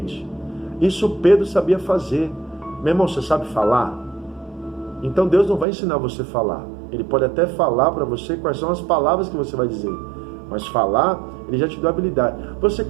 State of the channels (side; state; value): left; drops out; at 5.7 s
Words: Isso Pedro sabia fazer. Meu irmão, você sabe falar? Então Deus não vai ensinar você a falar. Ele pode até falar para você quais são as palavras que você vai dizer, mas falar, ele já te deu habilidade. Você